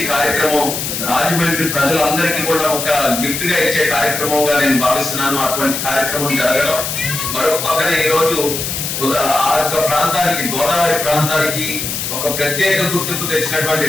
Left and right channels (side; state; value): left; noise; hiss, 4 dB below the sound